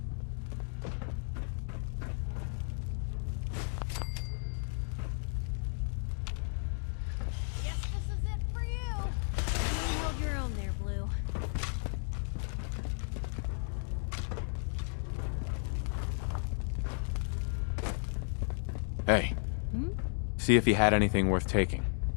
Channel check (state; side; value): silent; right; 55 dB below the other